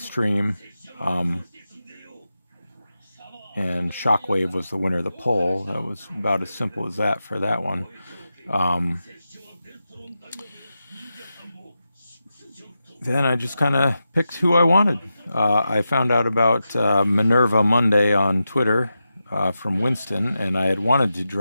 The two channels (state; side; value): inverted; both; correlation -0.90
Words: And Shockwave was the winner of the poll. That was about as simple as that for that one. Then I just kind of picked who I wanted. I found out about Minerva Monday on Twitter from Winston, and I had wanted to